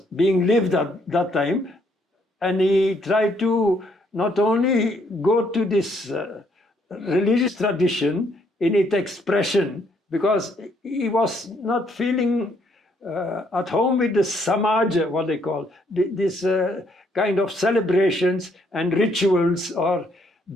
being lived at that time. And he tried to not only go to this religious tradition in its expression, because he was not feeling at home with the samaja, what they call this kind of celebrations and rituals, or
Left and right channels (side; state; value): both; normal; correlation 0.70